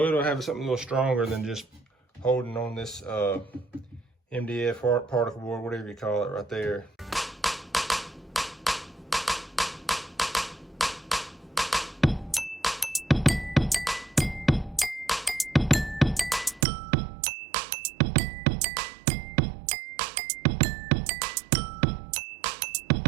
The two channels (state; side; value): drops out; left; at 16.7 s